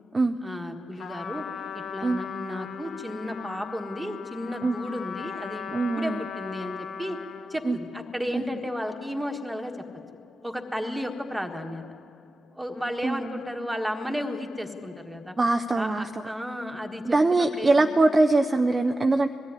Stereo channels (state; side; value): normal; both; correlation 0.93